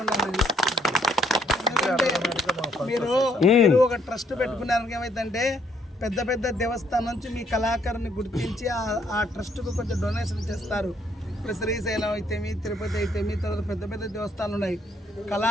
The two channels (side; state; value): both; normal; correlation 0.69